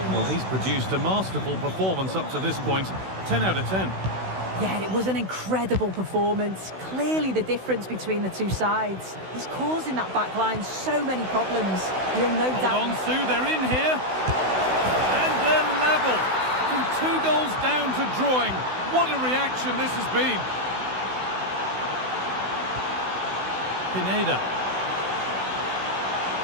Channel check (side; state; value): left; late; 16 ms